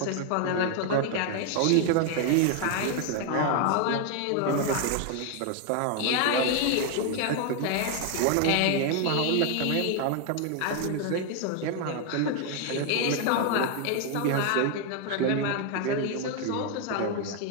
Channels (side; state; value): both; different; correlation 0.01